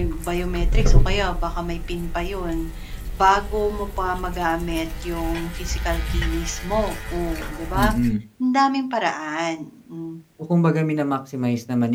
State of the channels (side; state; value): both; identical; correlation 1.00